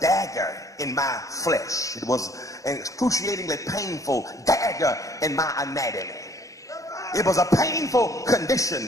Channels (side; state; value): right; late; 0.16 ms